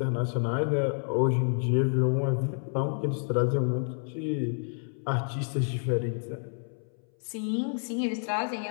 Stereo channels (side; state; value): right; silent; 58 dB below the other